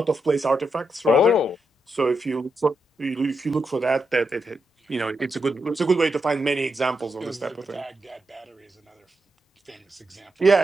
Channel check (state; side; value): normal; both; correlation 0.84